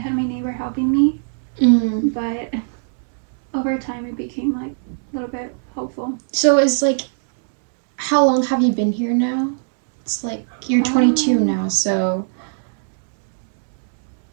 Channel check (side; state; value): left; silent; digital silence